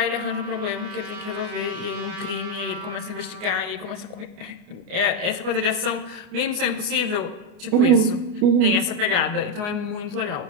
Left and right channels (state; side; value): late; left; 29 ms